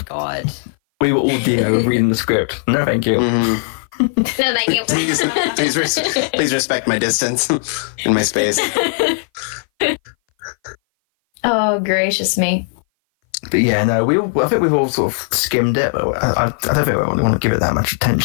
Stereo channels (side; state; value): right; silent; 59 dB below the other